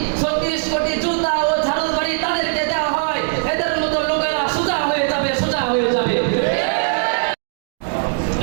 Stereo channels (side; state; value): left; silent; 65 dB below the other